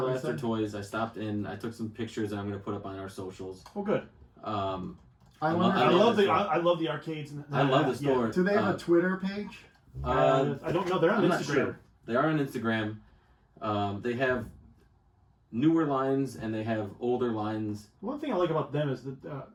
what you Blaster said? Toys. I stopped in. I took some pictures that I'm going to put up on our socials. Oh, good. I lo- wonder. I love the- I love the arcades. And I love the store. Do they have a Twitter page? I don't know. They're on I'm not Instagram. sure. They are on Instagram. They have newer lines and they have older lines. One thing I like about them is that,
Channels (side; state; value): both; identical; correlation 1.00